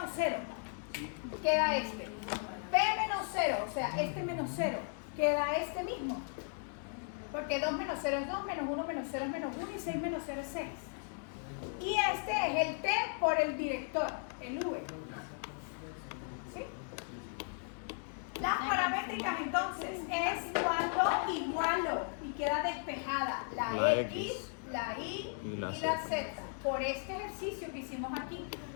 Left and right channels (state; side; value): silent; right; 54 dB below the other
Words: 0, queda este. P menos 0, o sea, este menos 0, queda este mismo. Porque 2 menos 0 es 2, menos 1 menos 0 es menos 1 y 6 menos 0 es 6. Y este es el T por el director, el V. ¿Sí? Las paramétricas entonces es cuando igualo y queda despejada la La X, X, la Y y la la Z. Z por este ejercicio que hicimos aquí.